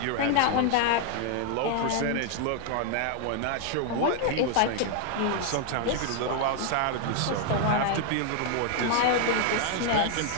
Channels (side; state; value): both; different; correlation 0.00